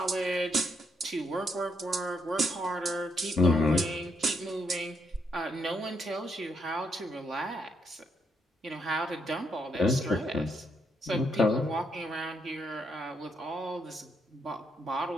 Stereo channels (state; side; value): normal; both; correlation 0.75